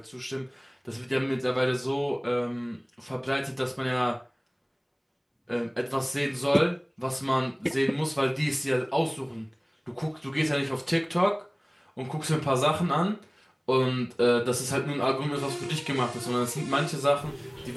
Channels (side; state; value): both; identical; correlation 1.00